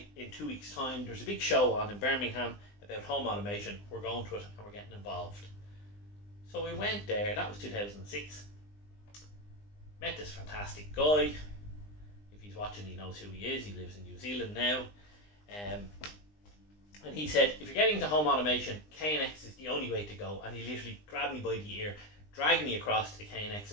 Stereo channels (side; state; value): right; late; 20 ms